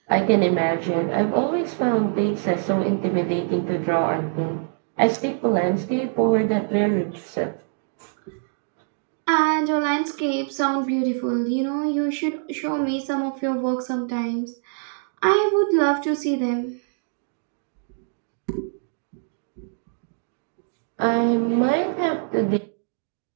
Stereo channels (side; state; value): left; silent; digital silence